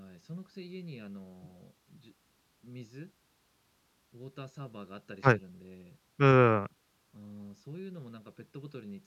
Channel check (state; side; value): identical; both; correlation 1.00